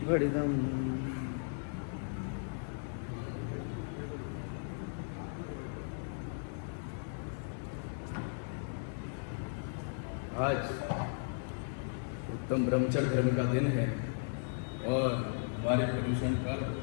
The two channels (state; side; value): silent; right; digital silence